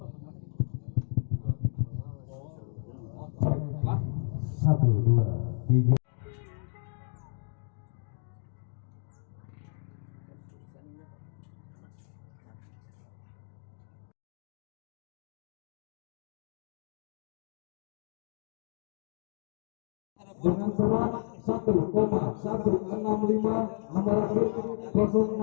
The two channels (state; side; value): silent; right; digital silence